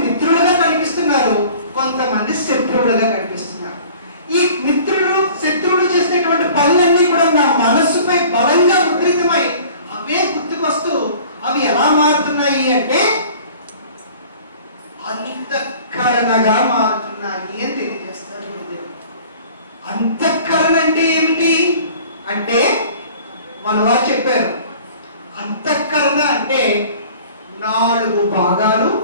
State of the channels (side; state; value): both; inverted; correlation -0.47